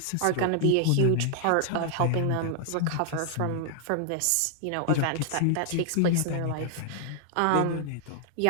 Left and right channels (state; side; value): different; both; correlation 0.00